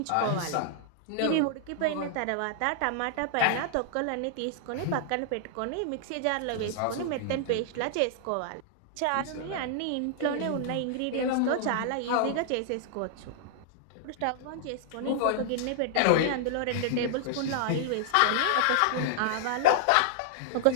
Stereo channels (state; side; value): different; both; correlation -0.01